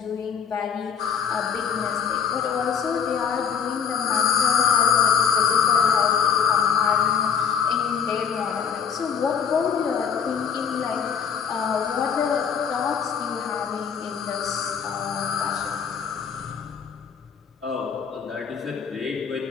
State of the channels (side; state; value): right; quieter; 7.2 dB